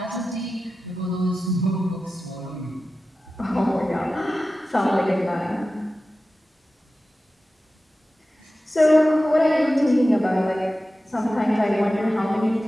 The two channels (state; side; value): normal; both; correlation 0.94